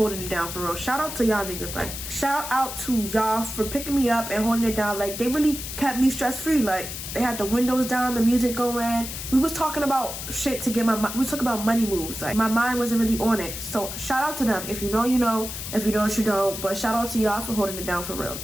it down for real. Shout out to y'all niggas. Like, shout out to y'all for picking me up and holding it down. Like, they really kept me stress-free. Like, They had the windows down, the music going. We was talking about shit to get we was talking about money moves. Like, my mind wasn't really on it. So shout out to them. If you know, you know. If you don't, you don't. But shout out to y'all for holding it down for real.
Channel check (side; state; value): left; noise; hiss, 7 dB below the sound